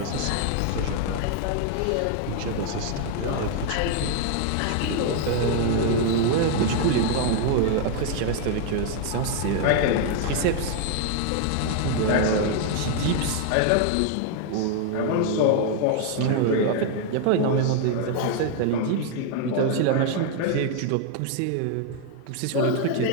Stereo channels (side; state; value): both; different; correlation 0.00